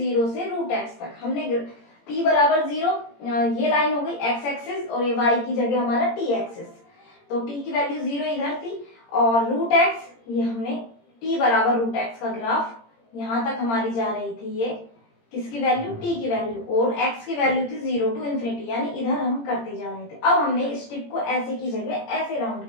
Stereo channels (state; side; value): late; right; 17 ms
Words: से √x तक। हमने t बराबर 0, ये लाइन हो गई x एक्सिस और ये y की जगह हमारा t एक्सिस, तो t की वैल्यू 0 इधर थी और √x ये हमने t बराबर √x का ग्राफ यहाँ तक हमारी जा रही थी, ये किसकी वैल्यू, t की वैल्यू, और x की वैल्यू थी 0 टू इन्फिनिटी, यानी इधर हम करते जा रहे थे। अब हमने इस टिप को ऐसे की जगह ऐसे राउंड